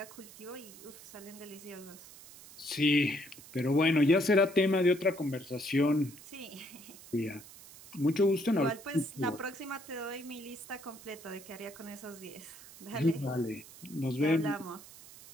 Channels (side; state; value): right; noise; hiss, 18 dB below the sound